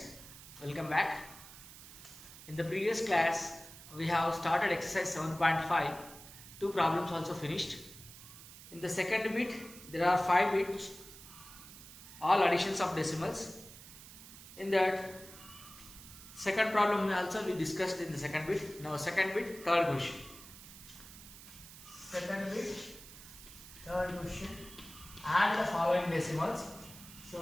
welcome back. In the previous class, we have started exercise 7.5. Two problems also finished. In the second bit, there are 5 bits, all additions of decimals. In that second problem also we discussed in the second bit. Now second bit, third question. Second bit, third question. Add the following decimals.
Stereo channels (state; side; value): noise; right; hiss, 16 dB below the sound